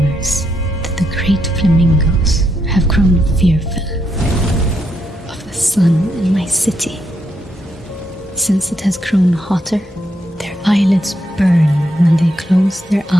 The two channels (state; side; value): normal; both; correlation 0.79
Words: that the great flamingos have grown fearful of the sun in my city. Since it has grown hotter, their eyelids burn when they close their